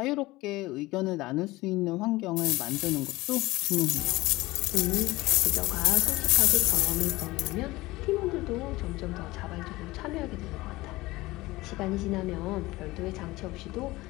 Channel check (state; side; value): quieter; right; 19.7 dB